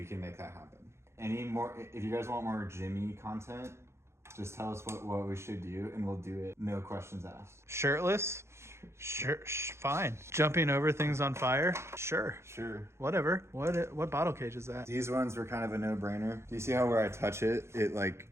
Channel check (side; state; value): left; late; 0.13 ms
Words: can make that happen. Any more, if you guys want more Jimmy content, just tell us what we should do and we'll do it. No questions asked. Shirtless? Sure, fine. Jumping over things on fire? Sure. Sure. Whatever. What bottle cage is that? These ones were kind of a no-brainer. Do you see how where I touch it, it like